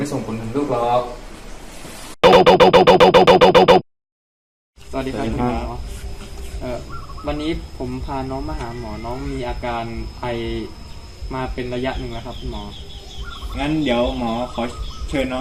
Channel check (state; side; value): identical; both; correlation 1.00